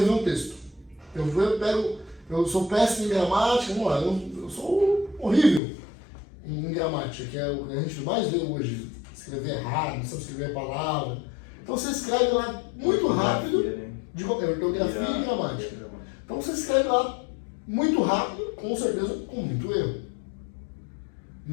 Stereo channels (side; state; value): right; drops out; at 5.6 s